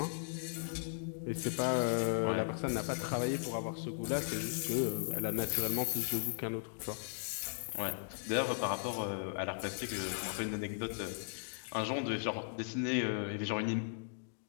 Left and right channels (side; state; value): right; silent; digital silence